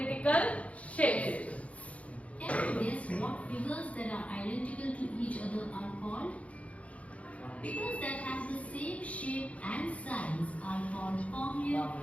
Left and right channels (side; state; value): right; late; 0.065 ms